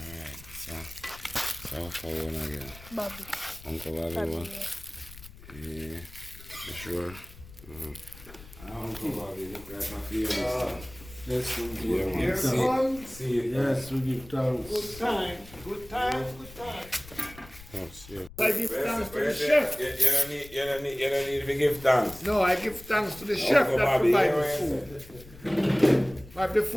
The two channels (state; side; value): noise; left; rumble, 18 dB below the sound